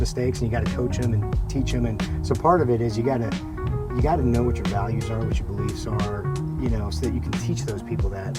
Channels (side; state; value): both; identical; correlation 1.00